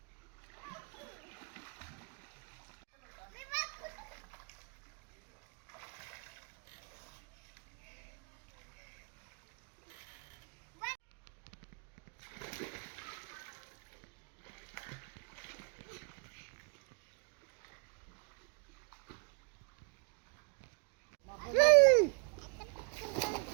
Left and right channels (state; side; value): quieter; left; 39.4 dB